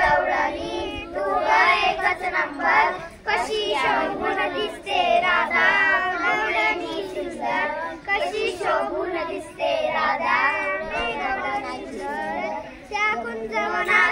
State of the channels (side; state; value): both; identical; correlation 1.00